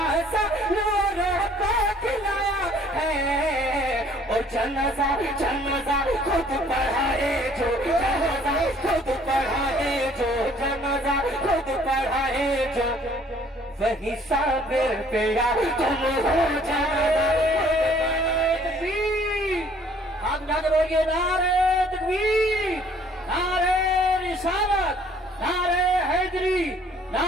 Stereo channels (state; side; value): normal; both; correlation 0.58